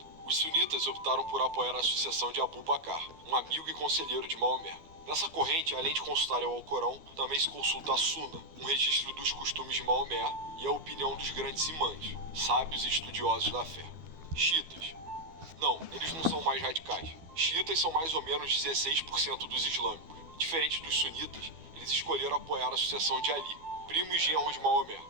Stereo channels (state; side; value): late; left; 12 ms